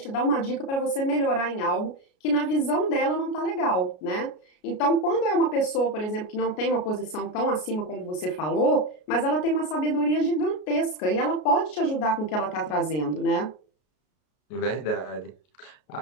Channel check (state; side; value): late; right; 33 ms